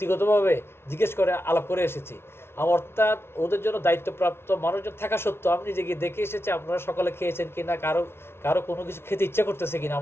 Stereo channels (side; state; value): right; late; 0.12 ms